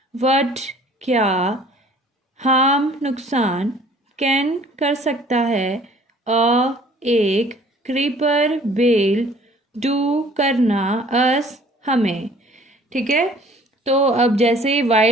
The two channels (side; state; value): both; normal; correlation 0.53